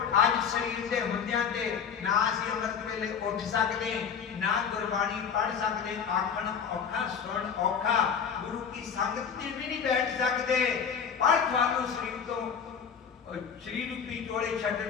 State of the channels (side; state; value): right; quieter; 7.0 dB